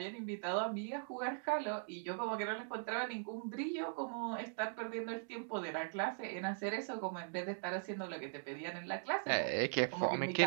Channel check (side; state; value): left; silent; digital silence